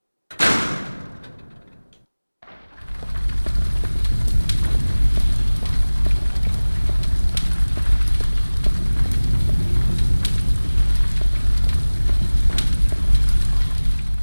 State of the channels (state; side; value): inverted; both; correlation -1.00